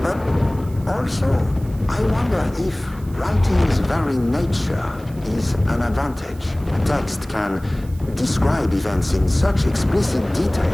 But also, I wonder if writing's very nature is an advantage. A text can describe events in such explicit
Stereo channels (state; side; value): noise; right; hiss, 25 dB below the sound